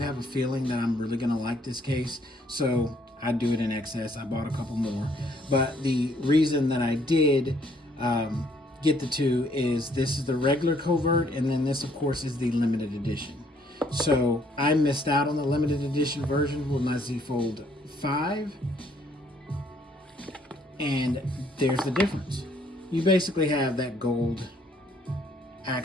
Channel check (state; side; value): normal; both; correlation 0.65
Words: a feeling that I'm really going to like this case. So I do it in excess. I bought a couple more. But the reason that I did get the two is this is the regular Covert, and then this, of course, is the limited edition. So I missed out on the limited edition version with my Z Fold 5. And there's the difference. You basically have that gold